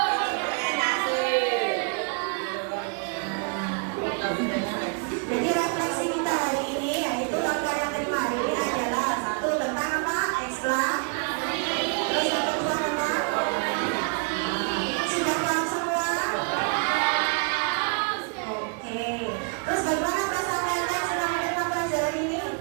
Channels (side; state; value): left; quieter; 37.8 dB